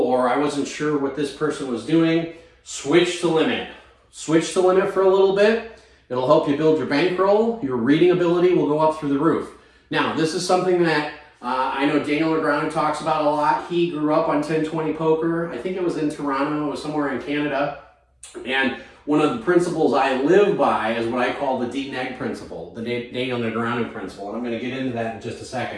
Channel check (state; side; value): identical; both; correlation 1.00